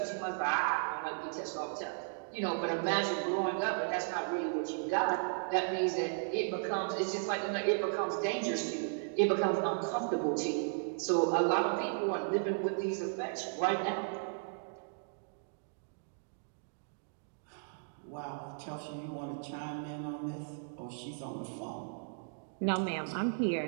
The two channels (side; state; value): left; silent; digital silence